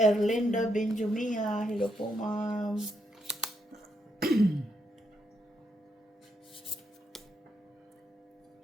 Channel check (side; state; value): both; normal; correlation 0.79